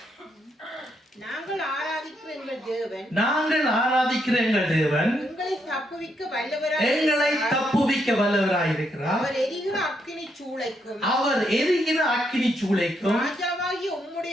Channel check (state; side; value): normal; both; correlation 0.77